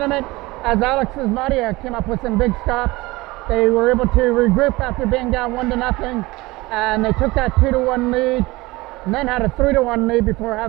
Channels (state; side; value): quieter; left; 21.2 dB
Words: as Alex Ismadia came up with some big stops. They were able to regroup after being down 1-0. And they took that 2-1 lead. And then had a 3-1 lead before